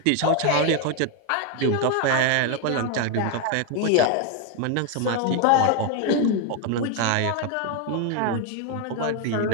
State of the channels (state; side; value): different; both; correlation 0.01